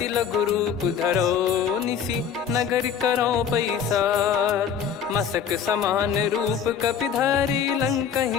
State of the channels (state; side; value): quieter; right; 7.7 dB